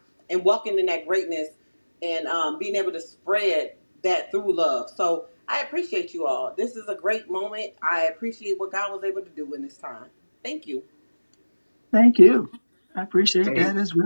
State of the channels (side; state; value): both; inverted; correlation -1.00